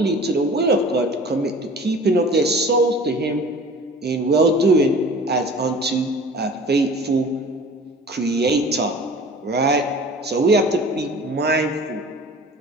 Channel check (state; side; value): normal; both; correlation 0.43